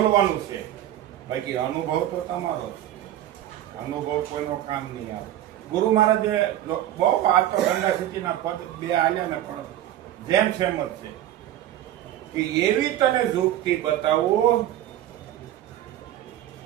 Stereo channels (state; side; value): quieter; left; 12.6 dB